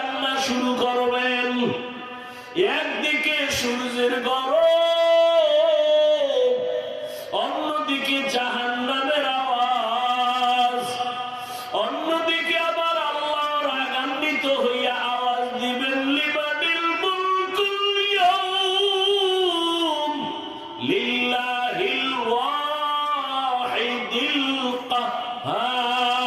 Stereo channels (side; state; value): both; identical; correlation 1.00